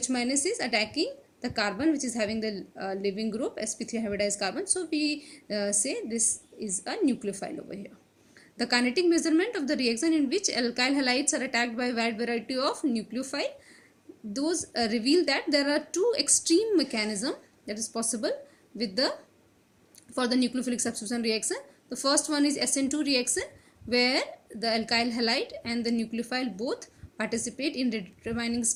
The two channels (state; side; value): identical; both; correlation 1.00